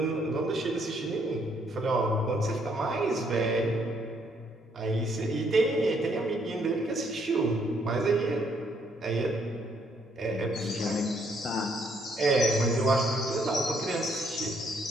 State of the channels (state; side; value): normal; both; correlation 0.70